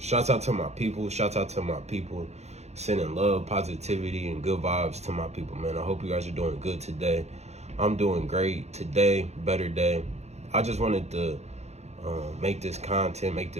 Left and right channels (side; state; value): left; late; 0.32 ms